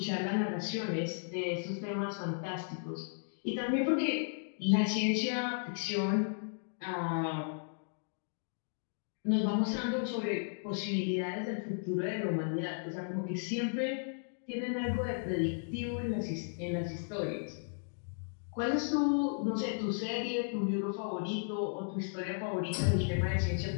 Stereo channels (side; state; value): right; silent; digital silence